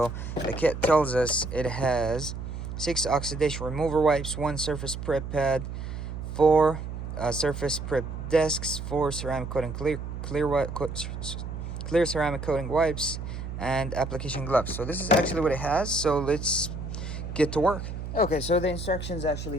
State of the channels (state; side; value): noise; right; hum, 7 dB below the sound